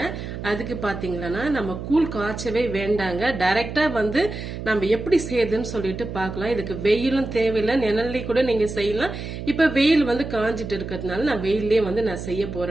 அதுக்கு பாத்தீங்கன்னா நம்ம கூழ் காய்ச்சவே வேண்டாங்க, டைரக்டா வந்து நம்ம எப்படி செய்யுதுன்னு சொல்லிட்டு பார்க்கலாம். இதுக்கு வெயிலும் தேவையில்லை, நிழல்லே கூட நீங்க செய்யலாம். இப்ப வெயில் வந்து காஞ்சிட்டு இருக்கிறதுனால நான் வெயிலே வந்து நான் செய்ய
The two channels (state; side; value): noise; right; hum, 8 dB below the sound